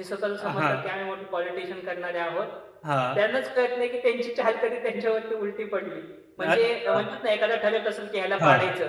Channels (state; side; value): identical; both; correlation 1.00